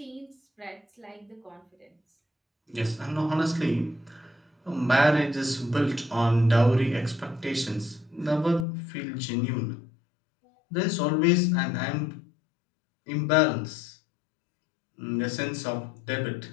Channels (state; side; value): drops out; right; at 8.7 s